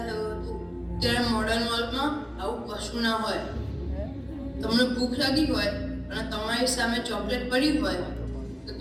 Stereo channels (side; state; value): both; identical; correlation 1.00